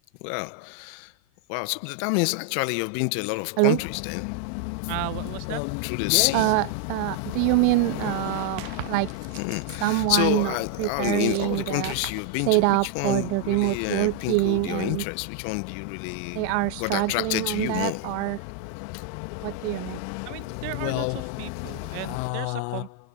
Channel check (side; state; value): both; different; correlation 0.00